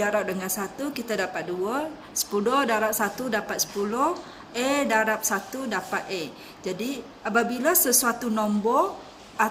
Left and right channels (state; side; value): identical; both; correlation 1.00